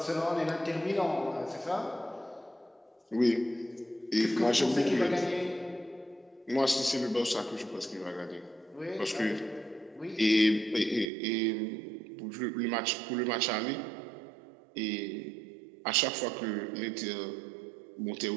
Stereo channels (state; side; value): drops out; left; at 11.1 s